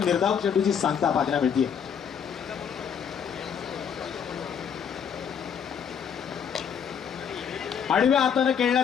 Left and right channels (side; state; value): right; quieter; 7.6 dB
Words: निर्धाव चेंडूची सांगता पाहायला मिळते. आडव्या हाताने